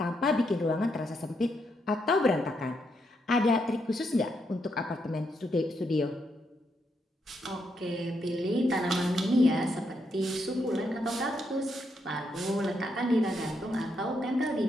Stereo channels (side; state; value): both; normal; correlation 0.79